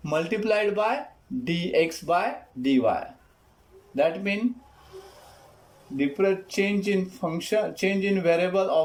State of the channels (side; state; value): both; identical; correlation 1.00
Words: multiplied by dx by dy. That means different change in variable